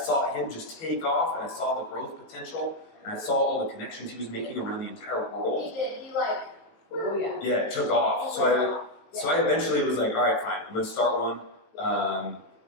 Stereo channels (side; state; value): right; late; 18 ms